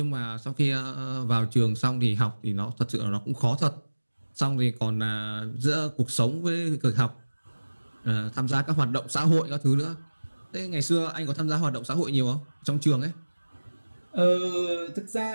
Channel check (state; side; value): inverted; both; correlation -1.00